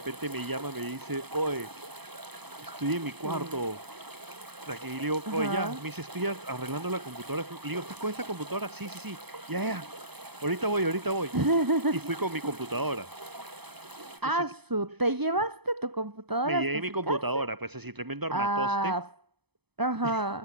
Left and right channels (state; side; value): late; left; 0.98 ms